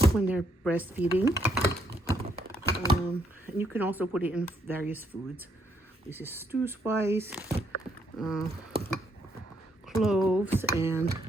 when they're breastfeeding. And you can also put it in various foods. This is stew spice, cloves, and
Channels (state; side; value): normal; both; correlation 0.73